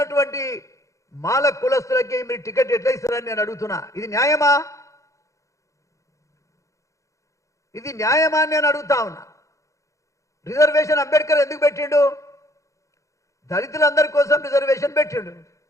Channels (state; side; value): late; right; 0.15 ms